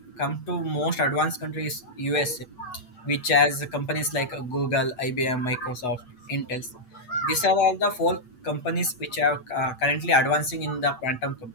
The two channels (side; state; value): right; late; 8.1 ms